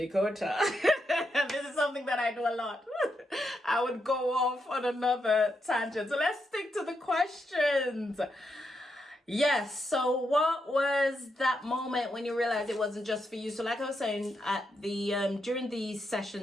This is something that I do a lot. I would go off on another tangent. So let's stick to the questions. Yes, so what was that moment when you realized it wasn't just for you? So like I was saying, at the during these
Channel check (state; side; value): normal; both; correlation 0.82